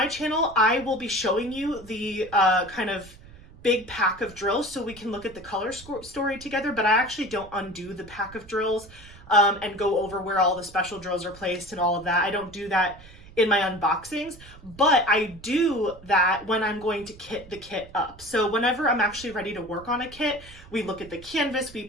channel, I will be showing you the kind of big pack of drills so we can look at the color story together, but I actually don't undo the pack of drills and go over where all the special drills are placed and all of that. I don't do that in my unboxings, but I do that when I'm going to kit the kit up. So whenever I'm actually ready to work on a kit, we look at the canvas, we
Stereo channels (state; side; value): noise; right; rumble, 20 dB below the sound